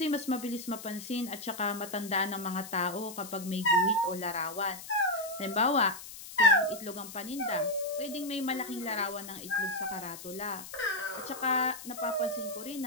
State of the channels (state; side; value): noise; left; hiss, 13 dB below the sound